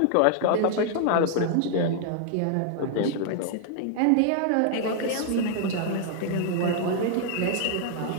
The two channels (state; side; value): different; both; correlation 0.00